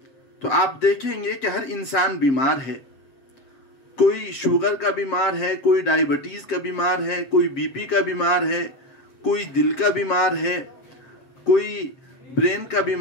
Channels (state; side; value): late; right; 7.5 ms